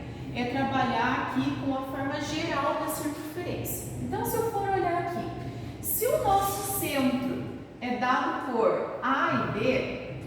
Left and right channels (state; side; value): identical; both; correlation 1.00